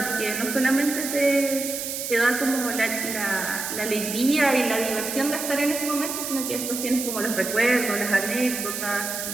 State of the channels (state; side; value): noise; right; hiss, 5 dB below the sound